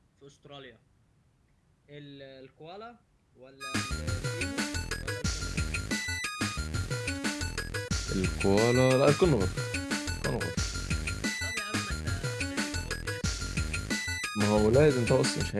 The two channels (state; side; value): identical; both; correlation 1.00